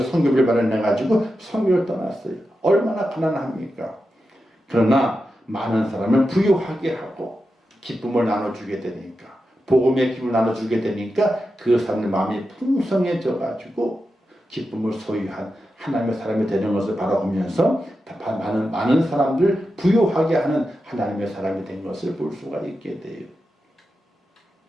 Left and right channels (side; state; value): both; normal; correlation 0.90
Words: 선교비를 마련해가지고 선교를 떠났어요. 얼마나 가난합니까? 그러나 많은 사람을 부유하게 하고 기쁨을 나눠주게 되니까, 복음의 기쁨을 나눠주게 되니까 그 사람의 마음이 풍성해져가지고 기쁨을 소유한 하나님의 사람이 되는 것을 바라보면서 많은 사람들 부유하게 하는 하나님의 사람이 된 것을 볼 수가 있게 돼요.